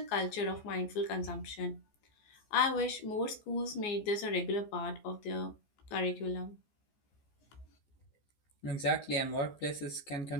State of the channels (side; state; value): right; late; 14 ms